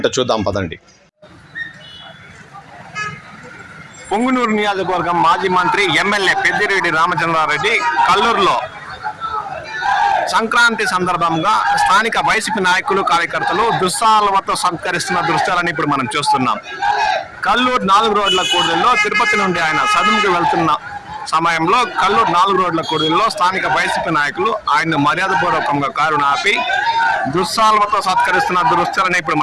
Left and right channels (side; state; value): both; identical; correlation 1.00